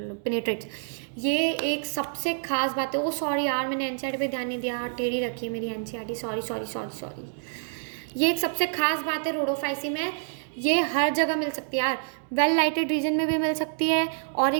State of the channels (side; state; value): left; silent; digital silence